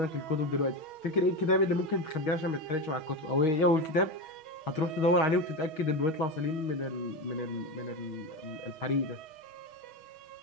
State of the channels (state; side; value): late; right; 6.2 ms